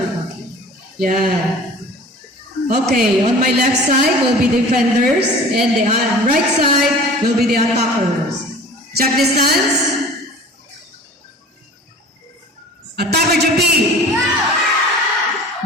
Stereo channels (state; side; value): normal; both; correlation 0.42